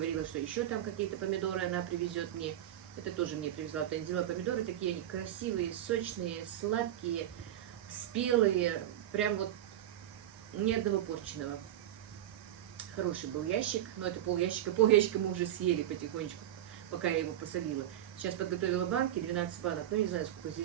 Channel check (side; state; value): left; quieter; 12.1 dB